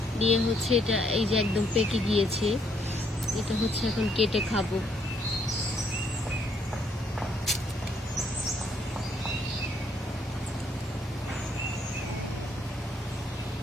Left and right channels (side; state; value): both; normal; correlation 0.70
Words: নিয়ে হচ্ছে এটা এই যে একদম পেকে গিয়েছে, এটা হচ্ছে এখন কেটে খাবো।